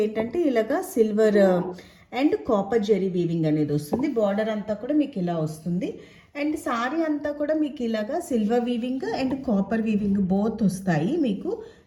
ఏంటంటే ఇలాగా silver and copper zari weaving అనేది వస్తుంది. బార్డర్ అంతా కూడా మీకు ఇలా వస్తుంది. అండ్ సారీ అంతా కూడా మీకు ఇలాగా silver weaving and copper weaving both వస్తాయి. మీకు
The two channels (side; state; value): both; identical; correlation 1.00